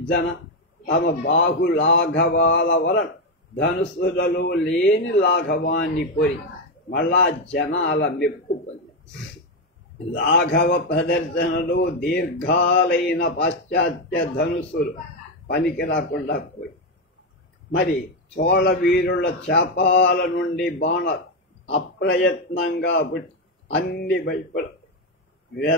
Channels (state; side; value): normal; both; correlation 0.07